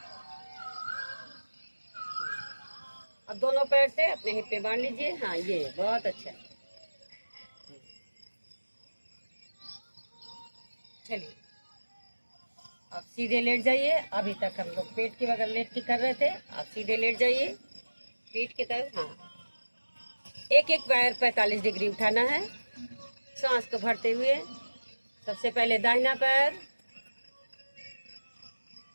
अब दोनों पैर से अपने हिप पे बांध लीजिए। हाँ, ये बहुत अच्छा। चलिए अब सीधे लेट जाइए। अभी तक हम लोग पेट के बगल लेट के कर रहे थे, अब सीधे लेट जाइए पीठ की तरफ। हाँ, एक एक पैर 45 डिग्री उठाना है। सांस को भरते हुए सबसे पहले दाहिना पैर,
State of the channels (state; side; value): inverted; both; correlation -1.00